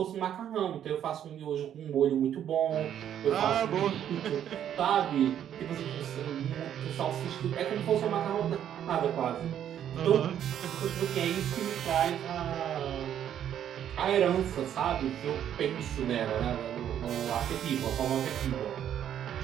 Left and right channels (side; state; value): left; quieter; 10.0 dB